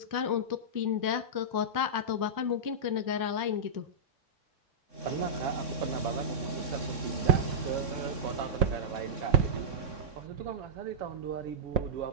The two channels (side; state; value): left; late; 3.6 ms